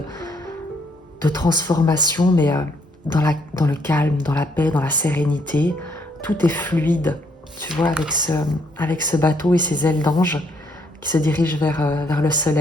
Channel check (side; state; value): both; normal; correlation 0.70